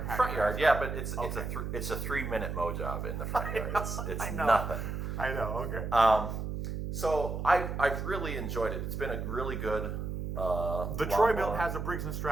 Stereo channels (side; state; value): right; noise; hum, 4 dB below the sound